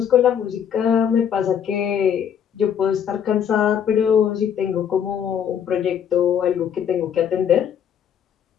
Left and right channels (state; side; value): quieter; right; 8.4 dB